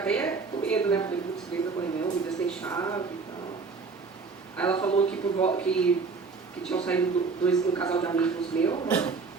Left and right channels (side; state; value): left; quieter; 4.7 dB